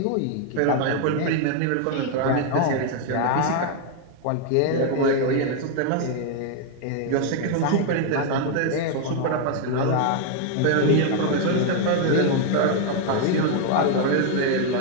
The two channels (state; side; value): different; both; correlation 0.00